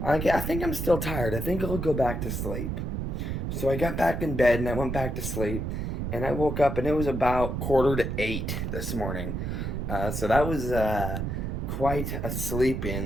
I think I'm still tired. I think I'll go back to sleep. So I got back in bed and I went back to sleep, and I woke up and it was about 7:45 this morning. So that was quite a sleep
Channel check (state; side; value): noise; right; rumble, 2 dB below the sound